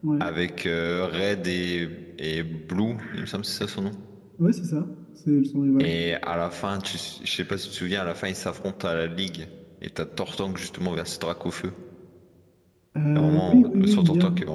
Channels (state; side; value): identical; both; correlation 1.00